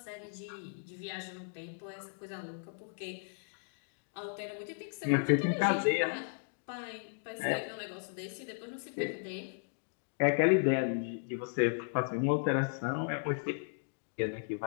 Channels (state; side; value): silent; right; digital silence